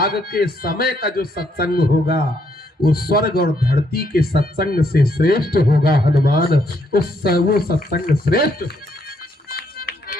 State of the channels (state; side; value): normal; both; correlation 0.73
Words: के समय का जो सत्संग होगा वो स्वर्ग और धरती के सत्संग से श्रेष्ठ होगा। हनुमान वो सत्संग श्रेष्ठ।